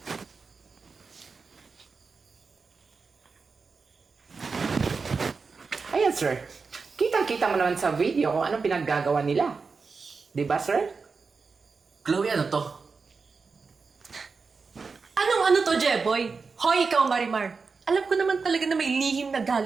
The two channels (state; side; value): quieter; left; 4.7 dB